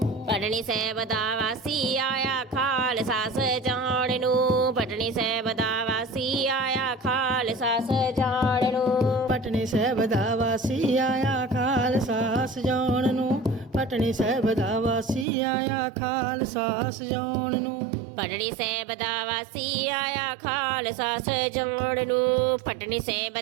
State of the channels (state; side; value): drops out; left; at 15.2 s